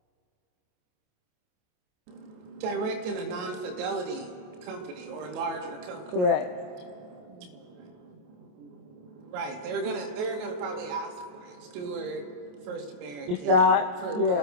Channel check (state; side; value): late; left; 28 ms